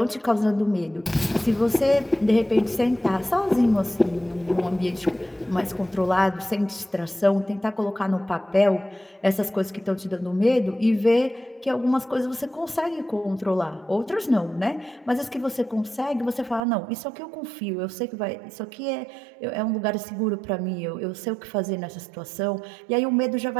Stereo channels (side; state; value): left; drops out; at 16.6 s